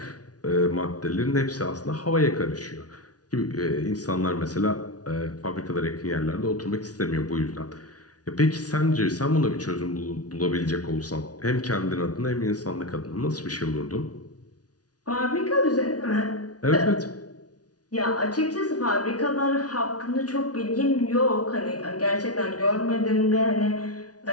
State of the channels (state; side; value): late; right; 0.68 ms